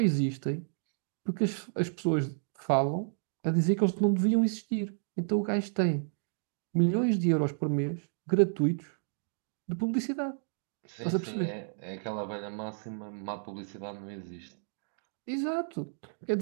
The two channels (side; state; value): left; silent; digital silence